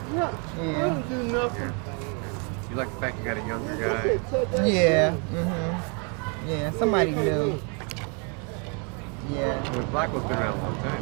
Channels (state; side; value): quieter; left; 36.2 dB